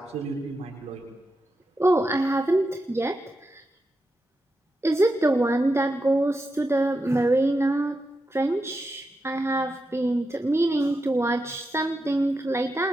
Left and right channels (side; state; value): both; normal; correlation 0.88